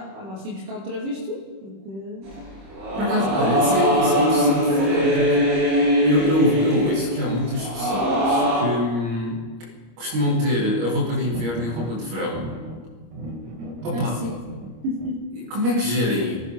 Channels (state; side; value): late; left; 26 ms